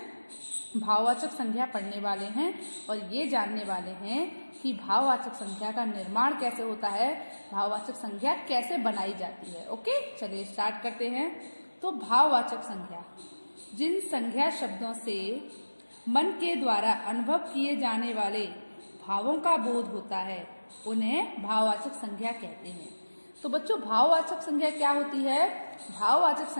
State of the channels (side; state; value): both; inverted; correlation -1.00